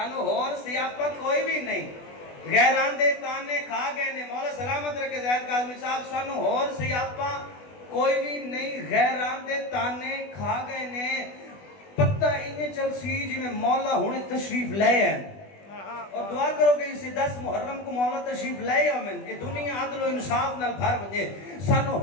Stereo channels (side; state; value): right; late; 20 ms